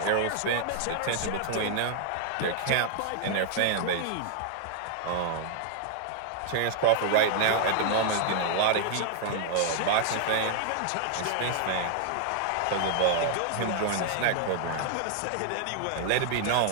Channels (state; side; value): different; both; correlation 0.00